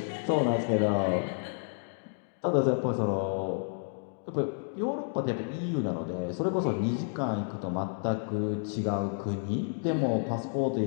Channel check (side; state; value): right; silent; digital silence